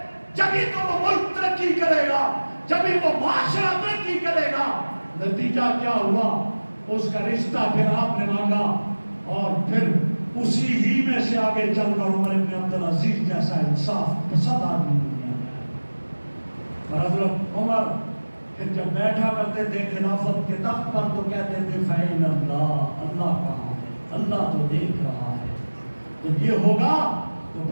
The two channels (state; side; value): inverted; both; correlation -1.00